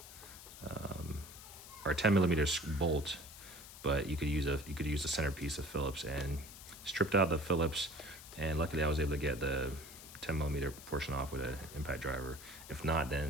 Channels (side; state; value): left; noise; hiss, 15 dB below the sound